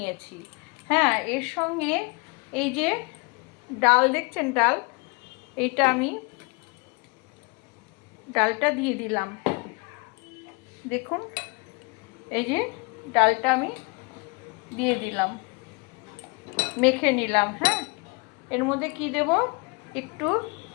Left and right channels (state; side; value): quieter; right; 30.5 dB